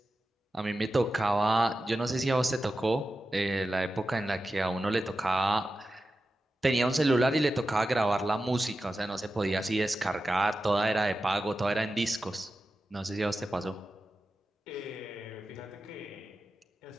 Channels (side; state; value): both; normal; correlation 0.92